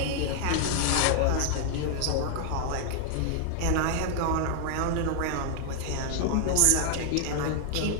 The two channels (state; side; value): different; both; correlation -0.01